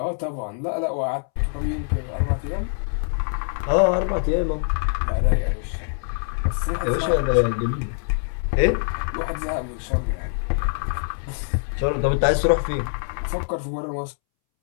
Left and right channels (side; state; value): right; silent; 63 dB below the other